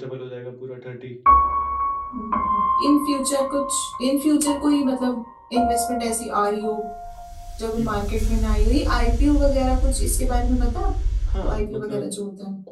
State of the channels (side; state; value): both; identical; correlation 1.00